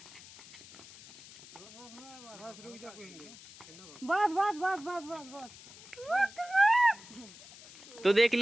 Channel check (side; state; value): left; noise; hiss, 18 dB below the sound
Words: बस बस बस बस बस बस। तो देख